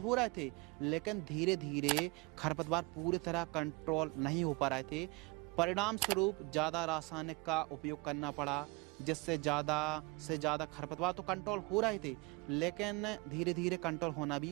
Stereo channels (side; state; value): left; quieter; 26.5 dB